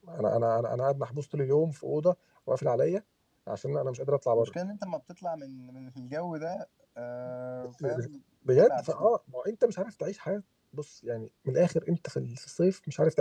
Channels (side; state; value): both; identical; correlation 1.00